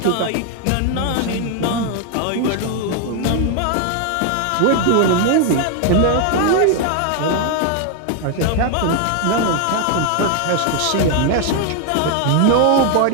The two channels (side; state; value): both; different; correlation 0.00